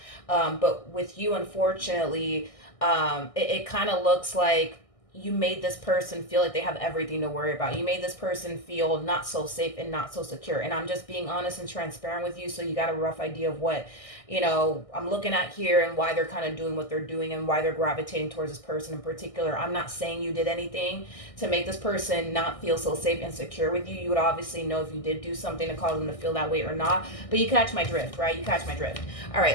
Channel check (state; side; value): late; right; 1.6 ms